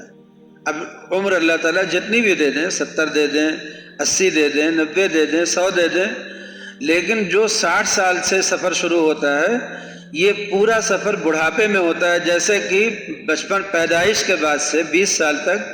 اب عمر اللہ تعالیٰ جتنی بھی دے دیں، 70 دے دیں، 80 دے دیں، 90 دے دیں، 100 دے دیں، لیکن جو 60 سال سے سفر شروع ہوتا ہے یہ پورا سفر بڑھاپے میں ہوتا ہے۔ جیسے کہ بچپن پیدائش کے بعد سے 20 سال تک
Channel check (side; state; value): both; identical; correlation 1.00